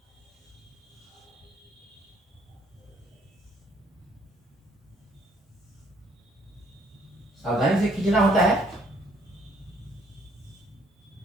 सावधानी से खींचना होता है,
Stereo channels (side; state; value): both; normal; correlation 0.65